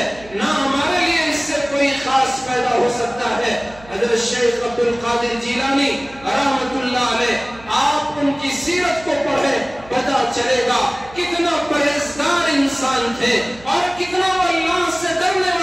نہ ہمارے لیے اس سے کوئی خاص پیدا ہو سکتا ہے۔ حضرت شیخ عبد القادر جیلانی رحمت اللہ علیہ، آپ ان کی سیرت کو پڑھیں، پتہ چلے گا کتنا پرہیزگار انسان تھے اور کتنا وہ اللہ سے ڈرنے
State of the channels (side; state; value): right; noise; hum, 22 dB below the sound